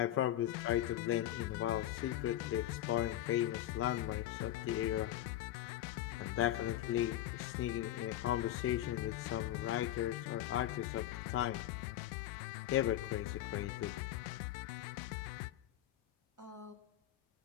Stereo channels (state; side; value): quieter; right; 13.0 dB